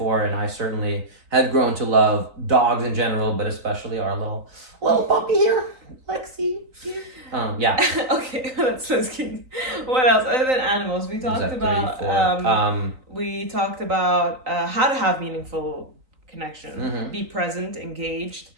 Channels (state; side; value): late; left; 3.9 ms